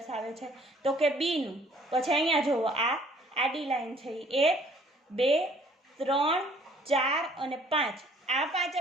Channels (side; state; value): both; normal; correlation 0.58